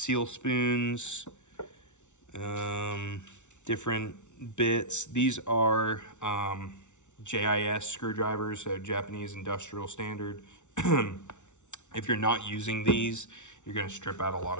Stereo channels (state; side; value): late; right; 0.84 ms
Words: spoons, different bits. These are JIS screwdrivers, so Japanese Industrial Standard. If you're not using these, you're going to strip out a lot